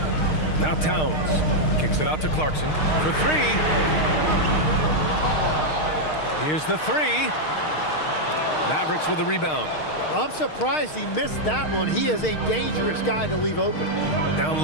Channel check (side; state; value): right; late; 6.5 ms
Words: Now Towns kicks it out to Clarkson for 3. Here's the 3. Mavericks with the rebound. I'm surprised he missed that one. He is a dangerous guy to leave open. Down